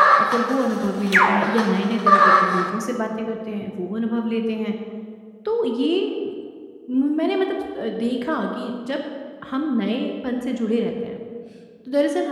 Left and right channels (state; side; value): identical; both; correlation 1.00